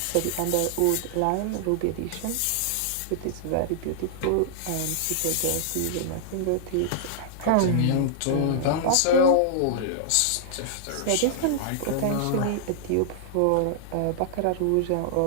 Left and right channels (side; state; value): both; different; correlation -0.01